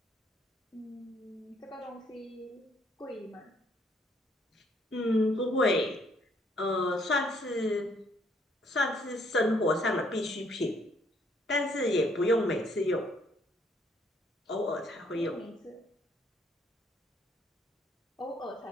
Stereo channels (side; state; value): both; normal; correlation 0.67